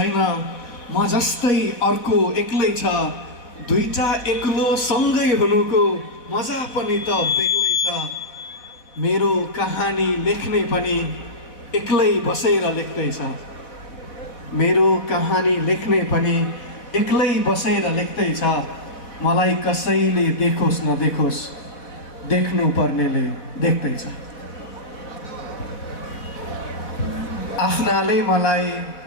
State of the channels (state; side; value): late; right; 4.1 ms